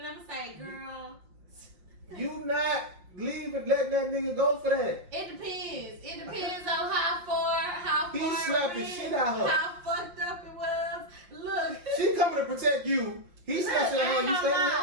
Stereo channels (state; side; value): late; left; 5.7 ms